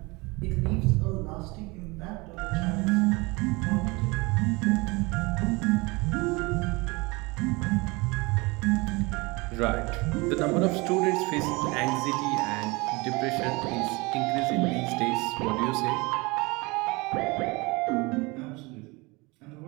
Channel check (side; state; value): left; quieter; 25.2 dB